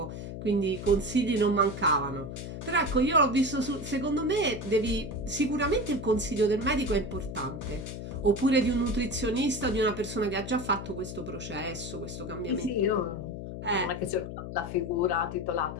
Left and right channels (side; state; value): left; noise; hum, 8 dB below the sound